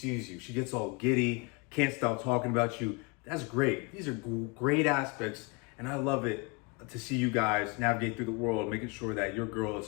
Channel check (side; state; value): right; quieter; 29.2 dB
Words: you. She gets all giddy, can't stop talking about you. That's great. These are great aspects, and I love it to see you guys navigate through the world, making sure that your girl is